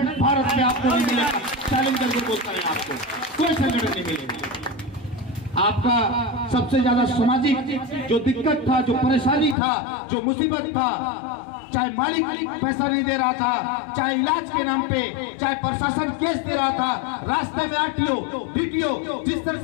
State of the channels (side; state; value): right; drops out; at 9.6 s